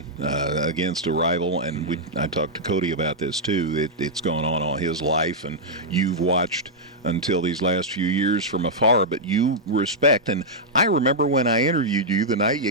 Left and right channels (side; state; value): both; normal; correlation -0.07